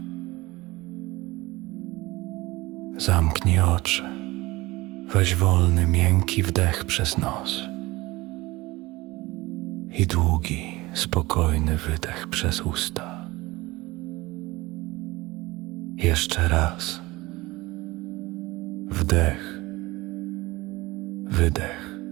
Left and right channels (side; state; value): left; quieter; 20.7 dB